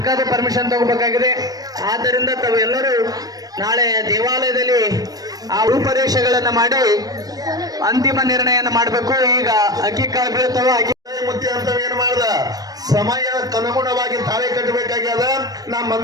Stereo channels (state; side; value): late; left; 0.18 ms